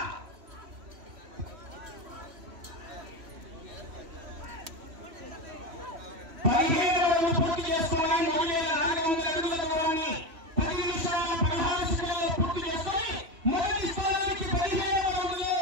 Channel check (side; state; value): left; late; 3.0 ms